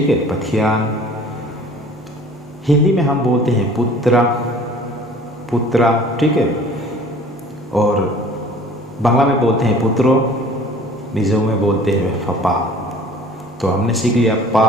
है, पथियान। हिंदी में हम बोलते हैं पुत्रा, पुत्रा, ठीक है। और बांग्ला में बोलते हैं पुत्रो, मिजो में बोलते हैं फपा। तो हमने सीख लिया पा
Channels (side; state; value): both; normal; correlation 0.48